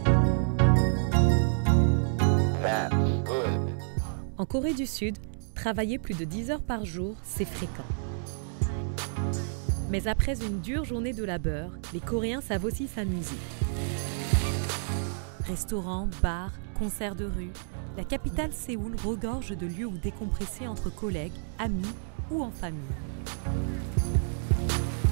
En Corée du Sud, travailler plus de 10 heures par jour, c'est fréquent. Mais après une dure journée de labeur, les Coréens savent aussi s'amuser. Restaurants, bars, concerts de rue, la capitale Séoul regorge de lieux où décompresser entre collègues, amis ou en famille.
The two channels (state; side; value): silent; left; digital silence